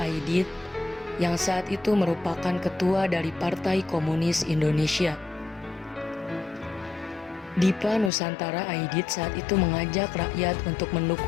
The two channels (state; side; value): drops out; right; at 8.1 s